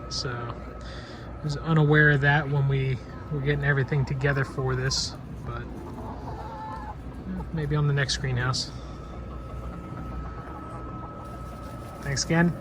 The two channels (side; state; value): both; identical; correlation 1.00